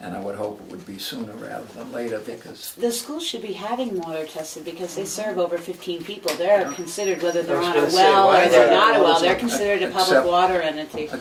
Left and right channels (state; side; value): identical; both; correlation 1.00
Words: And I would hope it would be sooner rather than later, because The school should be having water tested because they serve over 15 people. They're considered, whether they're I was on a gonna say, well why or is they're that? not a well, they're Except- considered a public water entity.